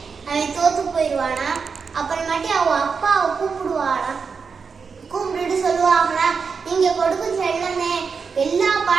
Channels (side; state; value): left; quieter; 5.5 dB